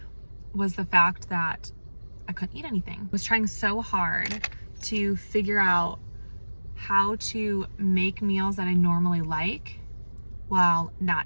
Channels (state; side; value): inverted; both; correlation -1.00